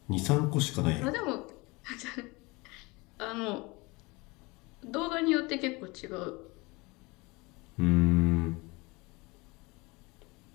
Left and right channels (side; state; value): right; quieter; 24.9 dB